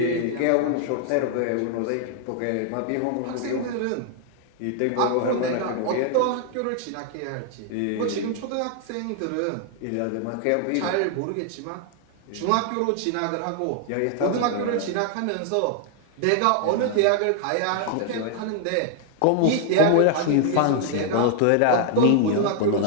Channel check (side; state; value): both; different; correlation 0.00